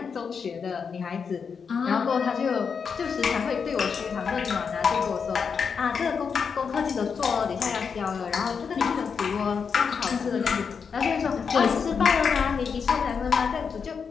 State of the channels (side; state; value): right; quieter; 6.1 dB